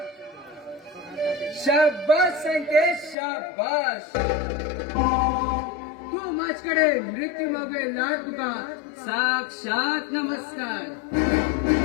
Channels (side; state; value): right; drops out; at 3.2 s